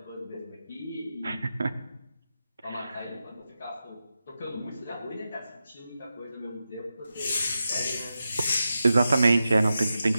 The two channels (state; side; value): inverted; both; correlation -0.90